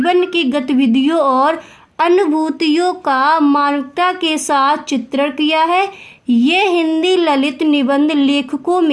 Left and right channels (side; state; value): both; identical; correlation 1.00